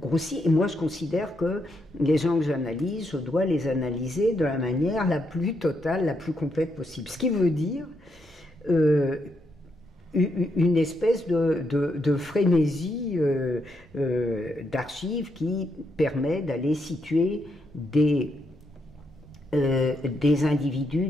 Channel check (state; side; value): normal; both; correlation 0.79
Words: Et moi, je considère que les gens que j'analyse, je dois les analyser de la manière la plus totale, la plus complète possible. Ce qui veut dire une espèce de frénésie d'archives qui permet d'aller situer des individus